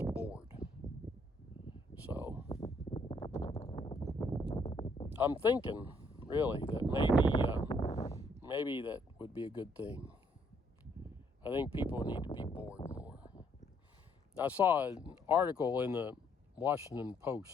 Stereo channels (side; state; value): both; normal; correlation 0.69